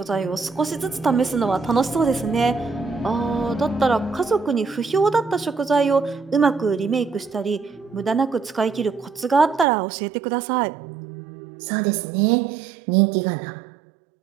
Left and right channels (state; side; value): drops out; left; at 9.7 s